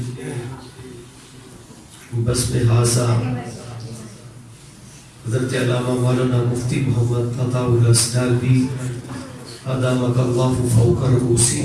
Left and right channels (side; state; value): both; identical; correlation 1.00